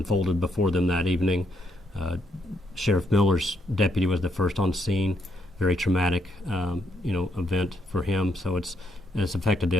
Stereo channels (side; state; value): both; normal; correlation 0.76